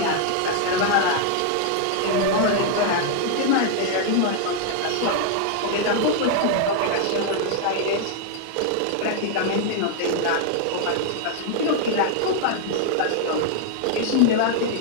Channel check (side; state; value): both; different; correlation 0.00